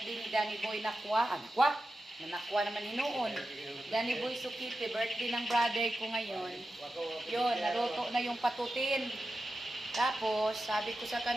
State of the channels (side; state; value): both; normal; correlation 0.91